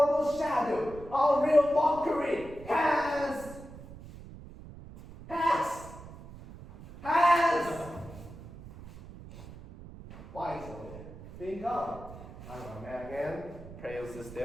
shadow, all real mockery, has. Why so? Think on. I'm a man again. Praise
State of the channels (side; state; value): right; noise; rumble, 15 dB below the sound